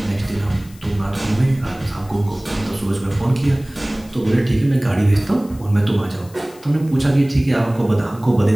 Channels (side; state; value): left; noise; hiss, 24 dB below the sound